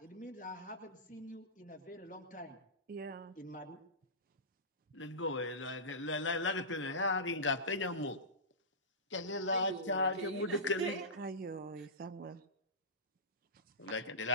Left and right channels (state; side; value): normal; both; correlation -0.19